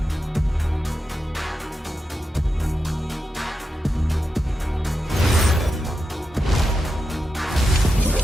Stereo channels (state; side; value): normal; both; correlation 0.88